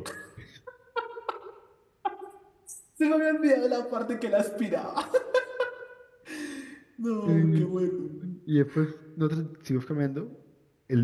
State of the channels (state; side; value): identical; both; correlation 1.00